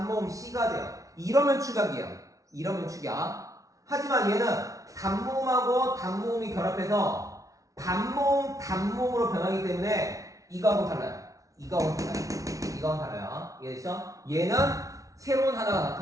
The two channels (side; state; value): left; late; 0.17 ms